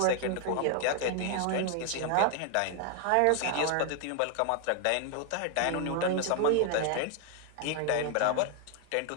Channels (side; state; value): both; different; correlation 0.00